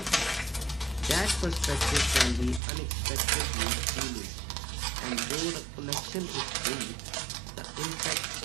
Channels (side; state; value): left; drops out; at 2.6 s